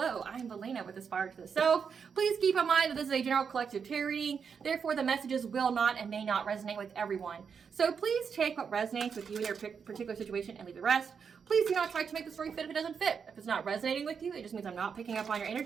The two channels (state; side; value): quieter; left; 6.4 dB